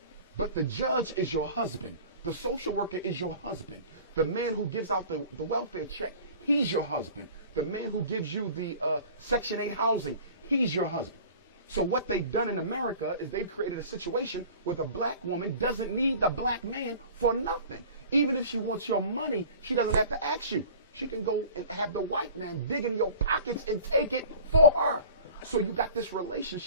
but the judge is your husband. The social worker is your husband. The man who gives out the welfare check, he's your husband. The man who gives you the Section 8 housing, he's your husband. So what they've done in America is they've created a situation where the black woman doesn't need the black man for nothing. Even if she wants your money, she doesn't have to ask you. She can go and have the white man dig in your pockets and take it for her. So you got this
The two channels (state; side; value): inverted; both; correlation -0.43